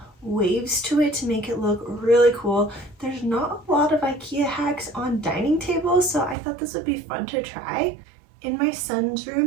waves to it to make it look really cool. There's not a lot of Ikea hacks on dining tables, so I thought this would be fun to try. In my son's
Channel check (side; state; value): left; drops out; at 6.4 s